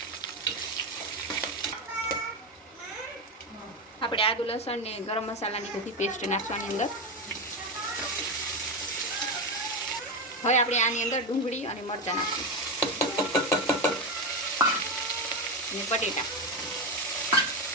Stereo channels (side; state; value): both; normal; correlation 0.13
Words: આપણે આદુ લસણ ને ગરમ મસાલાની બધી પેસ્ટ નાખવાની અંદર। હવે આપણે આની અંદર ડુંગળી અને મરચાં નાખશું અને બટેટા